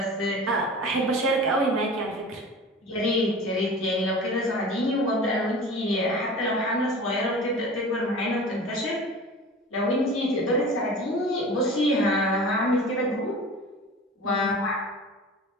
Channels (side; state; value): both; normal; correlation 0.38